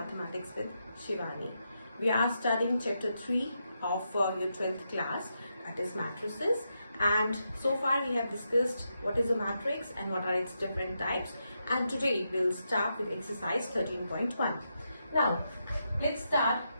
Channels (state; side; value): inverted; both; correlation -0.84